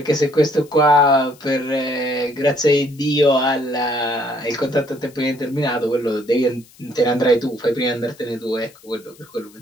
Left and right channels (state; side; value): noise; left; hiss, 26 dB below the sound